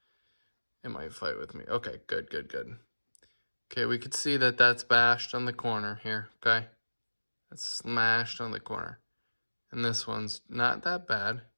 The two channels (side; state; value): both; inverted; correlation -1.00